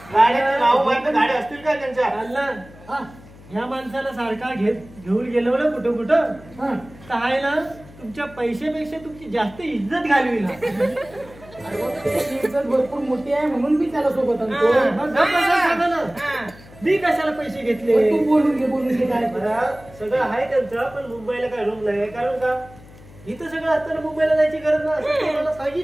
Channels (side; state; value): left; noise; hum, 21 dB below the sound